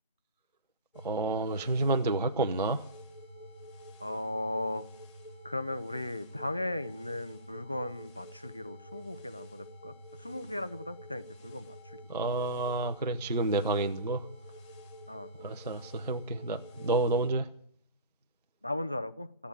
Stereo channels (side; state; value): both; inverted; correlation -0.38